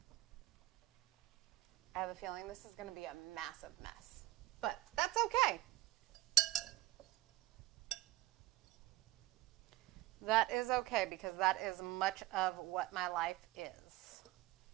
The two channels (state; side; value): quieter; left; 18.3 dB